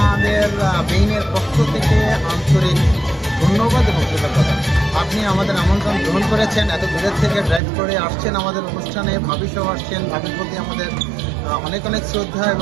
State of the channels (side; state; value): left; drops out; at 7.6 s